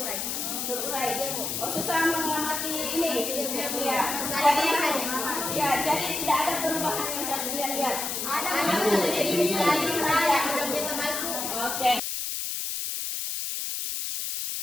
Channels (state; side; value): noise; left; hiss, 3 dB below the sound